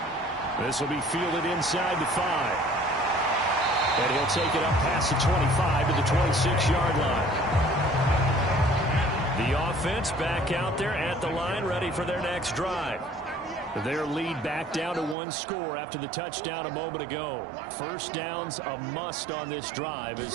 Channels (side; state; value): left; drops out; at 15.2 s